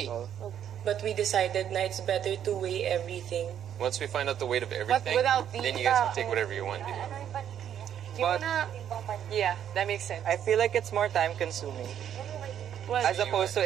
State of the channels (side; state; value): left; quieter; 9.7 dB